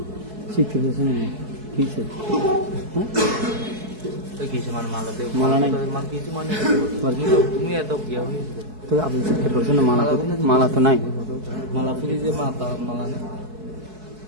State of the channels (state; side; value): late; left; 4.7 ms